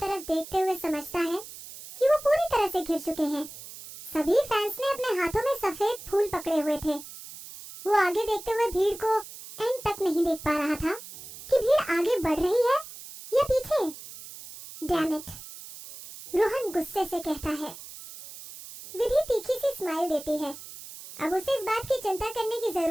देखते हुए समझता है कि वो पूरी तरह से घिर चुके हैं। सभी फैंस ने अपने हाथों में सफेद फूल पकड़े हुए थे। वो आगे देखते हुए भीड़ को एंड तक नहीं देख पा रहा था कि भीड़ आगे बढ़ रही है या पीछे। डैम इट, रोहन गुस्से से कहता है। विधि तीखी सी स्माइल देती है। अब उसे इस बात की चिंता करने की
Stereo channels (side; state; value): right; noise; hiss, 14 dB below the sound